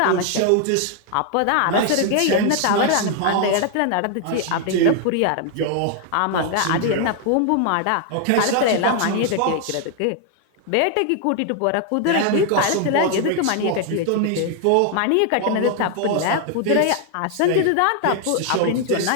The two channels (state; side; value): different; both; correlation 0.00